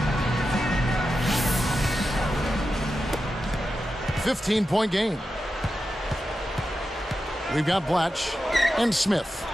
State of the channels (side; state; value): both; normal; correlation 0.90